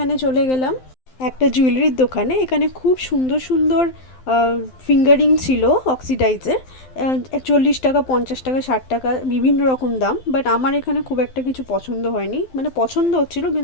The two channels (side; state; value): right; late; 12 ms